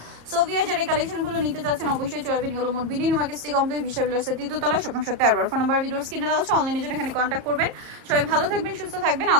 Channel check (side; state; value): left; late; 34 ms